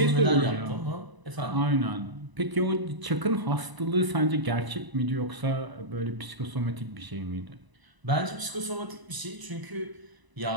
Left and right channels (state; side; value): late; left; 1.0 ms